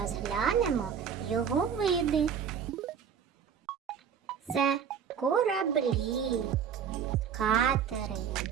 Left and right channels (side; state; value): left; quieter; 7.6 dB